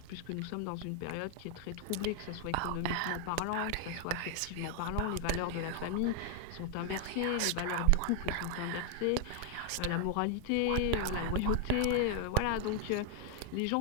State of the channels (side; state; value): both; different; correlation 0.00